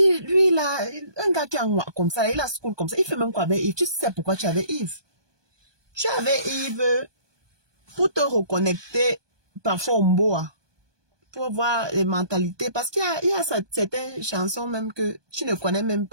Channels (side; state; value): left; late; 1.2 ms